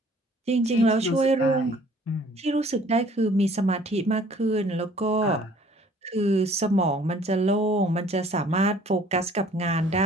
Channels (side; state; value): both; normal; correlation 0.55